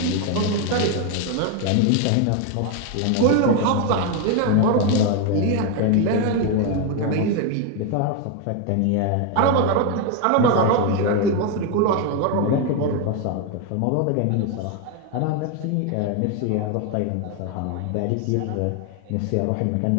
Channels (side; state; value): both; different; correlation 0.01